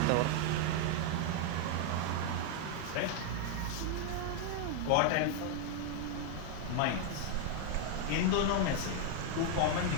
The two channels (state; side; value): different; both; correlation 0.00